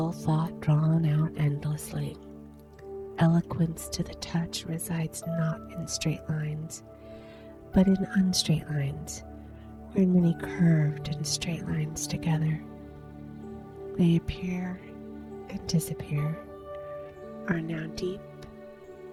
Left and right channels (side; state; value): both; identical; correlation 1.00